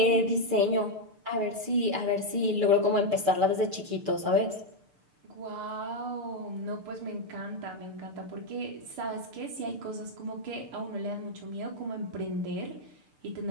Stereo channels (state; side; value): late; left; 6.7 ms